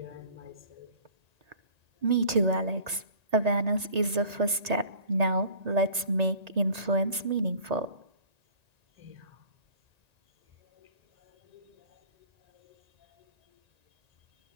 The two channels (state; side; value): late; left; 1.9 ms